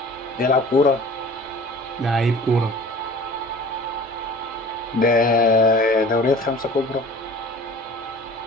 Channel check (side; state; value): both; normal; correlation 0.44